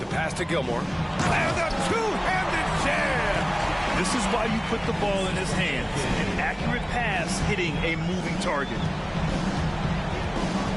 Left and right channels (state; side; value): identical; both; correlation 1.00